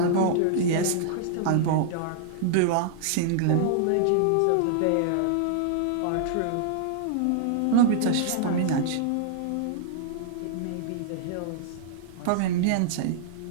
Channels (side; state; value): both; different; correlation -0.01